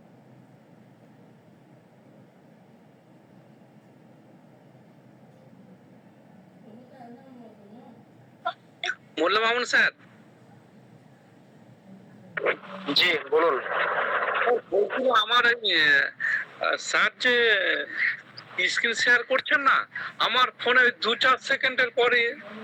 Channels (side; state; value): both; identical; correlation 1.00